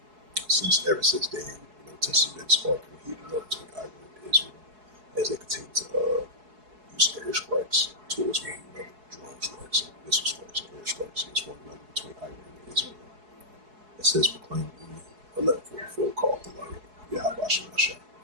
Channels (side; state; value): left; late; 4.7 ms